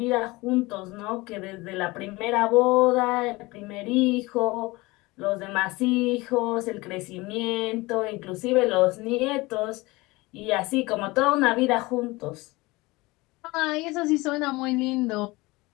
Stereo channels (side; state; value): right; quieter; 22.2 dB